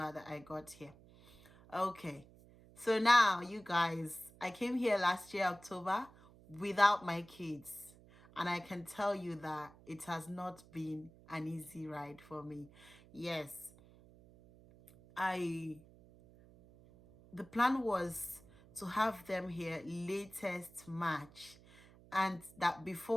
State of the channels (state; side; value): noise; right; hum, 23 dB below the sound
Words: that I got here. Okay. So now, you guys, I came here last year, October, without my kids. And I can tell you that it has not been an easy ride for me. Yes, the plan was to have them here latest March. And that